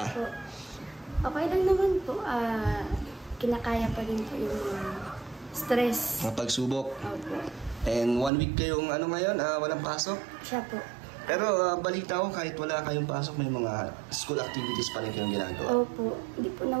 Okay lang naman po. Kinakaya pa rin po yung stress. Mga pagsubok. Opo. And 1 week kayong ngayon, walang pasok? Siya po. Pero balita ko kahit wala kayong pasok, may mga school activities pa rin kayong ginagawa. Opo. Hindi po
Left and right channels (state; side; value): drops out; left; at 8.3 s